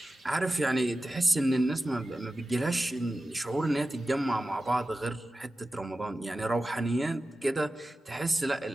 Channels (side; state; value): both; normal; correlation 0.94